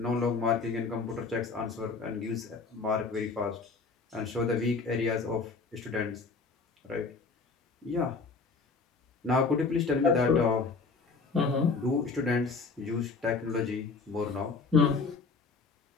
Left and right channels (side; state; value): right; quieter; 4.5 dB